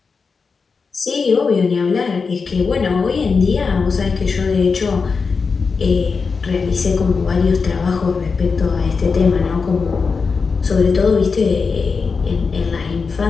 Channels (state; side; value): quieter; right; 4.9 dB